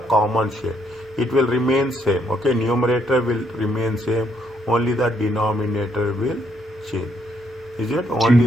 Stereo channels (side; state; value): both; normal; correlation 0.72